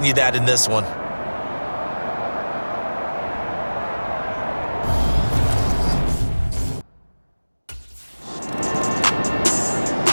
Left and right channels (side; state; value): both; inverted; correlation -1.00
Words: that in this one.